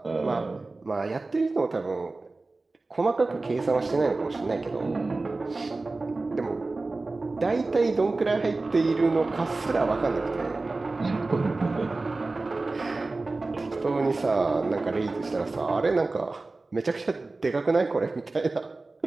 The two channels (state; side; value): quieter; left; 3.4 dB